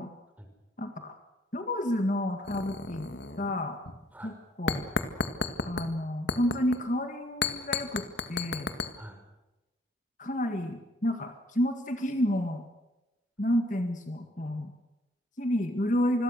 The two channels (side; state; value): both; normal; correlation 0.63